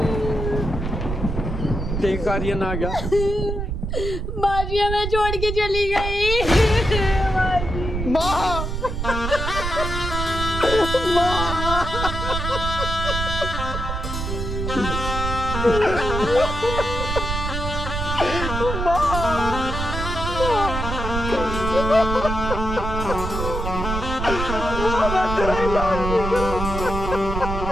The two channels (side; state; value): right; noise; rumble, 4 dB below the sound